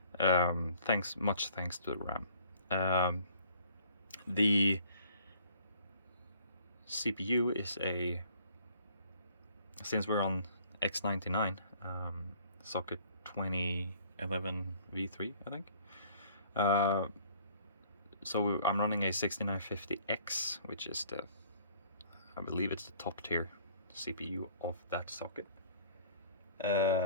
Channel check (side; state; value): both; inverted; correlation -0.57